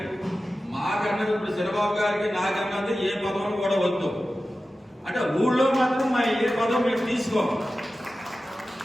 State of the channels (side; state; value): both; normal; correlation 0.94